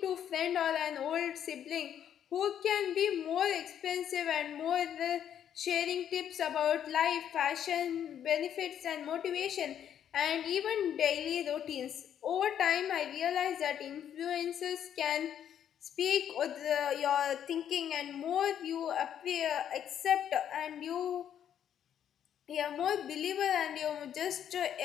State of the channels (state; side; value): quieter; right; 9.6 dB